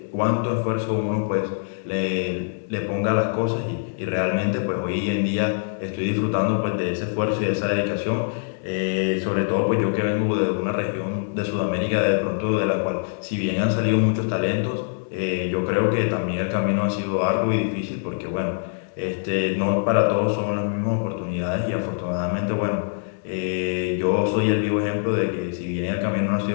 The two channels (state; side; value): silent; right; 62 dB below the other